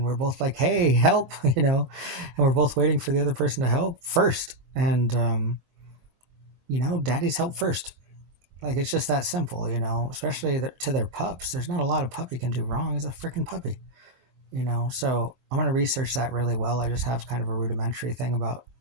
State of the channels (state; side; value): late; left; 24 ms